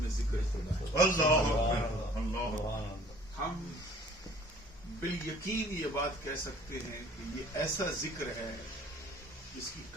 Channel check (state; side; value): normal; both; correlation 0.52